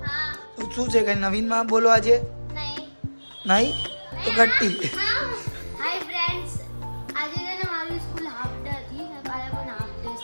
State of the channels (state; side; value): inverted; both; correlation -1.00